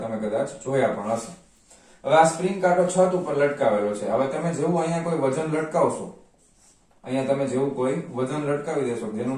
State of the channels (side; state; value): both; identical; correlation 1.00